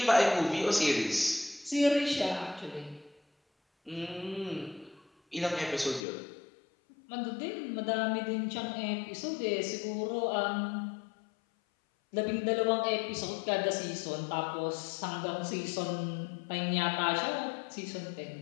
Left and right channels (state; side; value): drops out; right; at 6.1 s